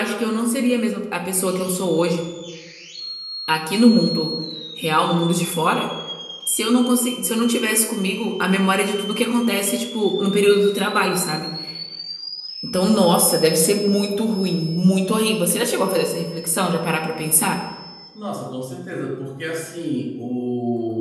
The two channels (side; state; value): both; identical; correlation 1.00